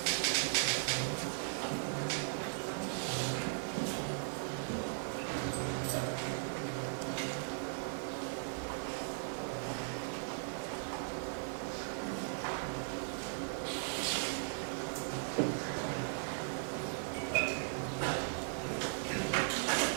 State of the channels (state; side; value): silent; left; digital silence